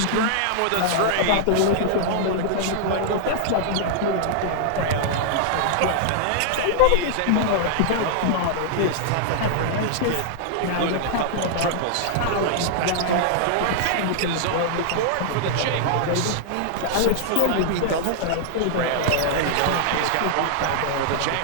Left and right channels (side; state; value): both; different; correlation -0.01